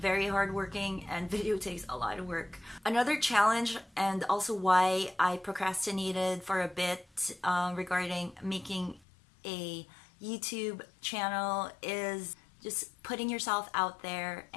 hardworking, and video takes a lot of work. Another challenge, and also why I procrastinated for a bit regarding making a YouTube channel, is just putting yourself out there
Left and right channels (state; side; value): drops out; right; at 9.0 s